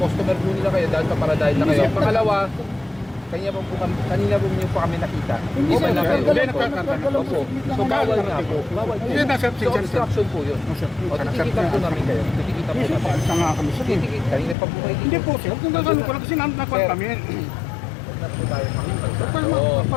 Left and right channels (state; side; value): drops out; right; at 14.6 s